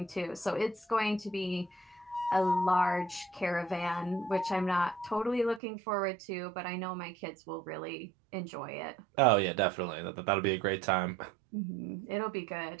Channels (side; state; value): left; drops out; at 5.6 s